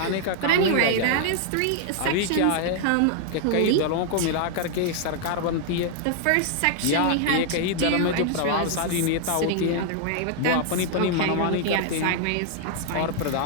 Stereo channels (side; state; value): both; different; correlation 0.00